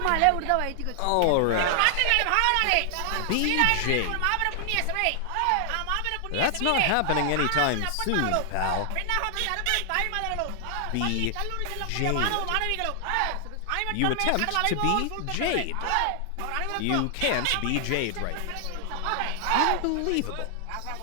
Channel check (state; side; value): different; both; correlation 0.00